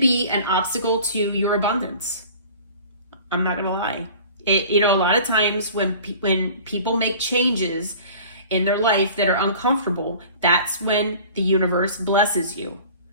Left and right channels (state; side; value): inverted; both; correlation -0.44